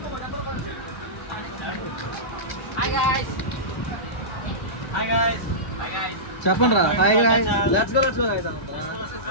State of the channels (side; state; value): right; late; 2.1 ms